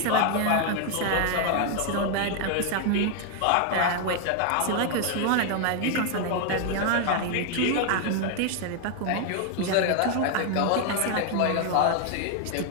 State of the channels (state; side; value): different; both; correlation 0.00